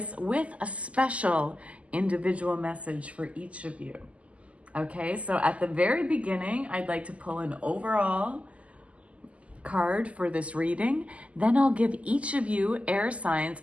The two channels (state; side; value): late; left; 0.064 ms